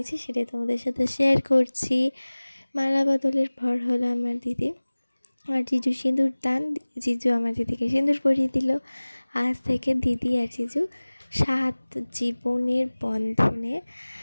সেটাই তোমাদের সাথে শেয়ার করছি। মালা বদলের পর হলো আমার দিদি আর জিজু সিঁদুর দান। জিজু আমার দিদিকে সিঁদুর পরিয়ে দিল। আজ থেকে দিদি আর জিজু 7 জীবনের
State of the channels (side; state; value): both; inverted; correlation -1.00